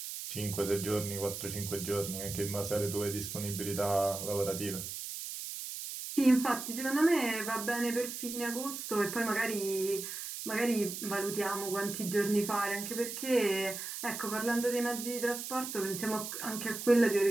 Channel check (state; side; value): noise; right; hiss, 7 dB below the sound